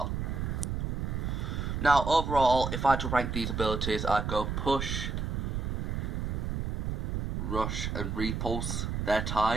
Now overall, if I had to rank these abilities, I'd go push, rush and repulse. They're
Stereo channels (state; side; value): noise; right; rumble, 2 dB below the sound